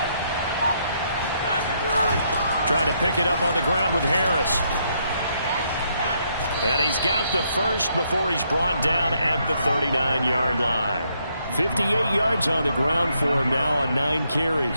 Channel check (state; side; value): inverted; both; correlation -0.74